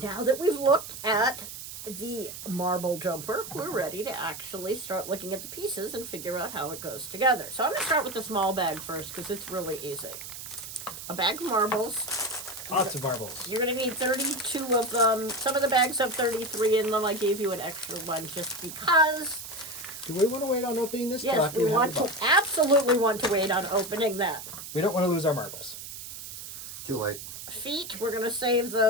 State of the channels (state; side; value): noise; right; hiss, 10 dB below the sound